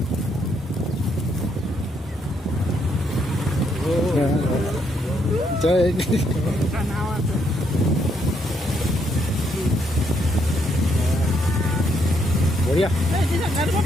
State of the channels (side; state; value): both; normal; correlation 0.74